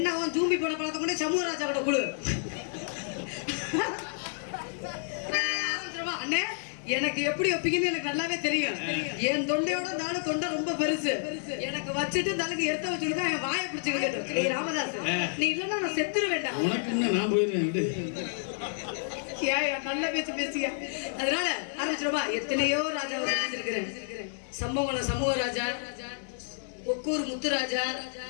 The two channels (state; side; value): silent; right; digital silence